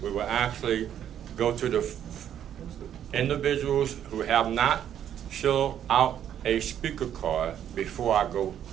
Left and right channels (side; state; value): left; quieter; 10.0 dB